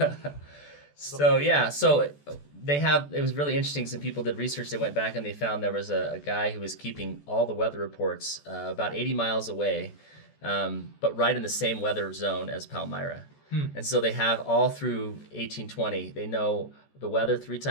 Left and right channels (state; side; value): late; right; 14 ms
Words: So they have, it was really interesting. Some people did research. They went back and they found there was a guy who was keeping all the weather reports about 80 miles away, but right in the same weather zone as Palmyra. And so they have all through 1820, they know the weather